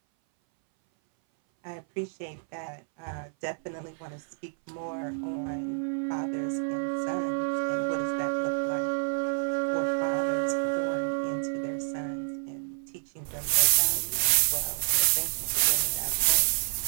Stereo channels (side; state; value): left; silent; 58 dB below the other